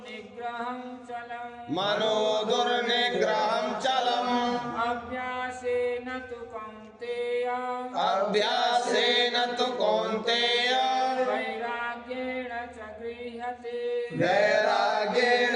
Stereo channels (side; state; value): both; identical; correlation 1.00